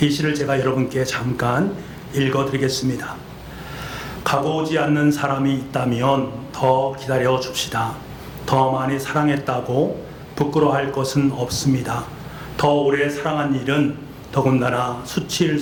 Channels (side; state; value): both; identical; correlation 1.00